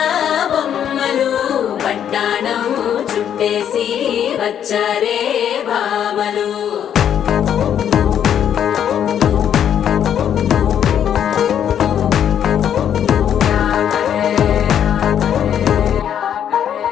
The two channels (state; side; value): quieter; right; 9.3 dB